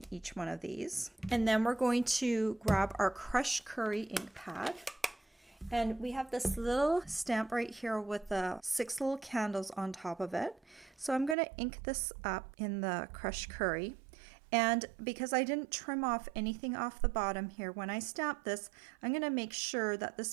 each one of these. And then we're going to grab our crushed curry ink pad. And we have this little stamp right here with the 6 little candles on top of it. So I'm going to ink this up in the crushed curry. And because I didn't trim off anything off the bottom here, when I stamp this, I'm going to make sure that this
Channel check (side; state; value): left; drops out; at 11.4 s